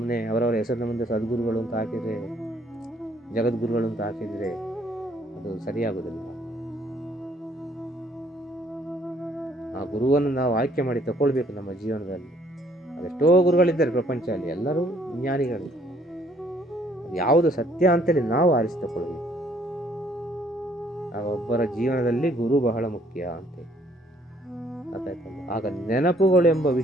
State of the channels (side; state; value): both; normal; correlation 0.64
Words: ಅವರವರ ಹೆಸರಿನ ಮುಂದೆ ಸದ್ಗುರುಗಳು ಅಂತ ಹಾಕಿದರೆ, ಜಗದ್ಗುರುಗಳು ಅಂತ ಹಾಕಿದರೆ ಅದು ಸರಿಯಾಗುವುದಿಲ್ಲ. ಆ ಗುರುವನ್ನು ನಾವು ಆಯ್ಕೆ ಮಾಡಿ ತಗೊಳ್ಬೇಕು ನಮ್ಮ ಜೀವನದಲ್ಲಿ. ಅದೆಷ್ಟೋ ಗುರುಗಳಿದ್ದಾರೆ ಪ್ರಪಂಚದಲ್ಲಿ, ಎಲ್ಲರೂ ಜ್ಞಾನಿಗಳು. ಯಾವುದು ಸತ್ಯ ಅಂತೇಳಿ ನಾವು ಆರಿಸಿ ತಗೊಳ್ಬೇಕು. ಆಗ ಒಬ್ಬರ ಜೀವನದಲ್ಲಿ ಗುರು ಬಹಳ ಮುಖ್ಯ ಅಂತೇಳಿ ಗೊತ್ತಾಯ್ತಲ್ಲ. ಆಗ ನೆನಪುಗಳೆಂಬ